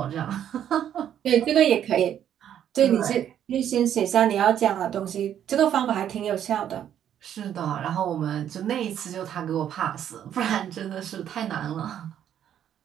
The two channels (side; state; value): left; quieter; 10.0 dB